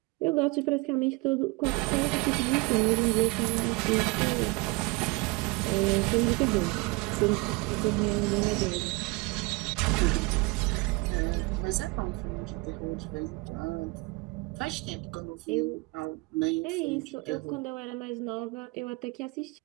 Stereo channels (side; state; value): left; quieter; 26.3 dB